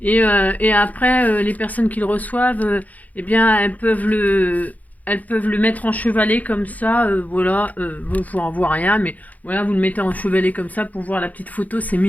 Et après, les personnes qui le reçoivent, eh bien, elles peuvent le mettre en chevalet comme ça, voilà, vous n'en voit rien, mais voilà, vous le mettez en chevalet comme ça pour voir la petite photo, c'est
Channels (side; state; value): right; late; 0.077 ms